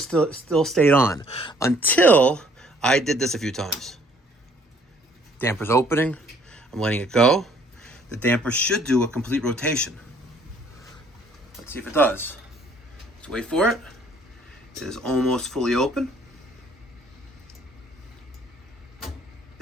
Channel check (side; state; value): both; normal; correlation 0.61